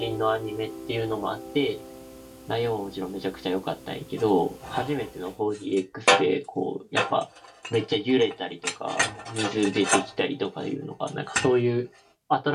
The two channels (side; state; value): both; identical; correlation 1.00